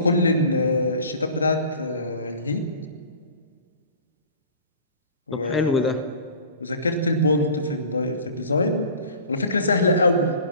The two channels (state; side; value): inverted; both; correlation -0.43